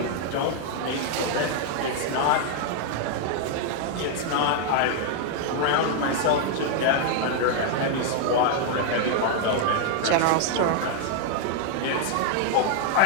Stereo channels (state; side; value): different; both; correlation 0.00